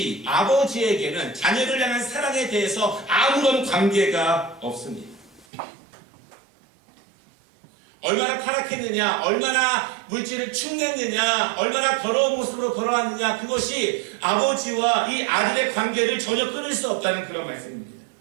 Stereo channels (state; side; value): drops out; left; at 5.5 s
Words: 아버지에게는 자녀를 향한 사랑에 대해서 아무런 관계가 없습니다. 얼마나 타락했느냐, 얼마나 물질을 축냈느냐, 얼마나 더러운 모습으로 돌아왔느냐, 그것이 아버지와 이 아들의 관계를 전혀 끊을 수 없다는 그런 말씀입니다.